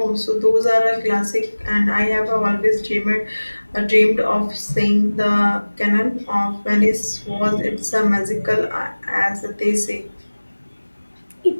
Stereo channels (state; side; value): inverted; both; correlation -1.00